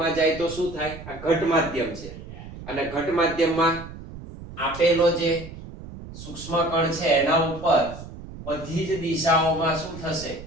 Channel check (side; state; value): right; noise; rumble, 13 dB below the sound